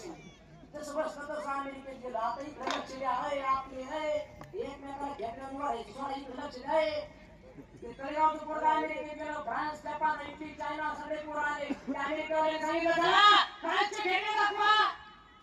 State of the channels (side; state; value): both; identical; correlation 1.00